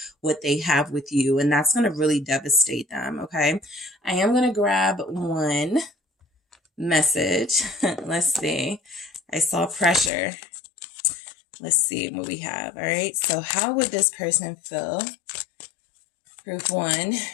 what they have with you. And that's going to really devastate them, okay? I am going to grab one message. Let's see. I saw pressure. Let's see what we have. All right. So how would this person feel? Group 1,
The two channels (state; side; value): drops out; right; at 10.1 s